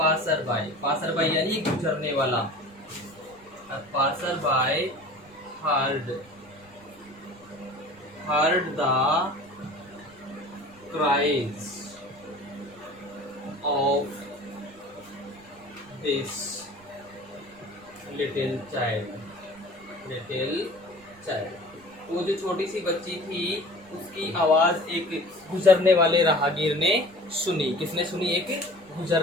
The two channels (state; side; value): noise; right; rumble, 27 dB below the sound